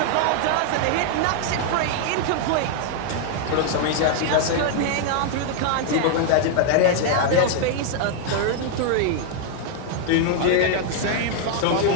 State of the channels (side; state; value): both; different; correlation 0.00